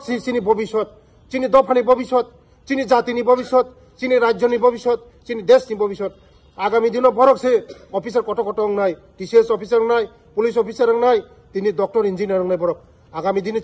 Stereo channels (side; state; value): both; identical; correlation 1.00